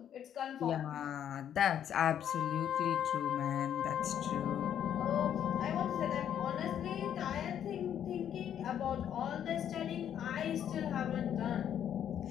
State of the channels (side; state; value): right; quieter; 9.6 dB